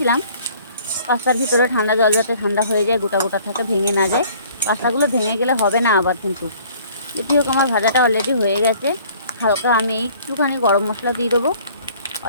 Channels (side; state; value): both; inverted; correlation -0.54